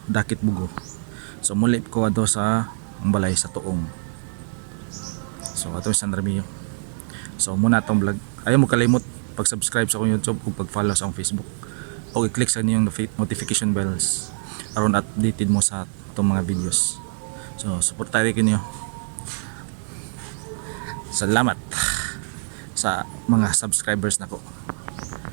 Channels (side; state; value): left; silent; digital silence